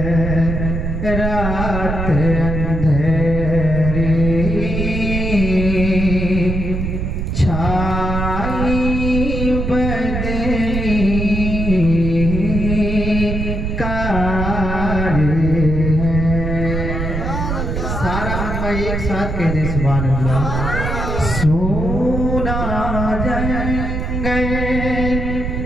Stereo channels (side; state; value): right; noise; rumble, 2 dB below the sound